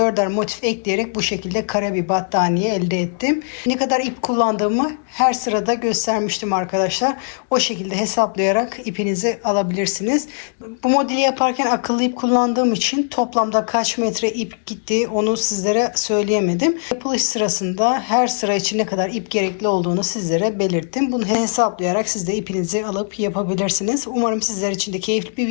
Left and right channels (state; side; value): silent; right; digital silence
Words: 4'er motif ekleyerek bu şekilde kare bir battaniye elde ettim. Ne kadar ip kullandığımı her sırada göstermiştim arkadaşlar. O şekilde hesaplayarak ipinizi alabilirsiniz. Bu modeli yaparken akıllı ip kullandığım için toplamda kaç metre ip gitti onu sizlere söyleyemedim. Yapılış sırasında her sıra için ne kadar ip gerekli olduğunu sizlere belirttim. Bunu hesaplayarak siz de ipinizi alıp yapabilirsiniz. Umarım sizler için de keyifli bir